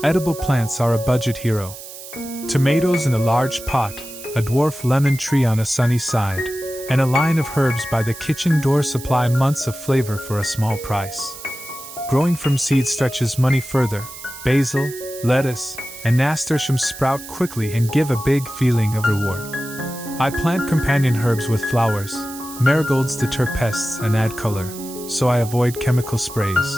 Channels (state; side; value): noise; right; hiss, 14 dB below the sound